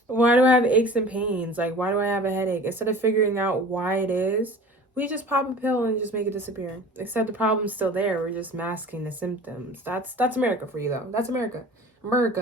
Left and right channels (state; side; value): normal; both; correlation 0.41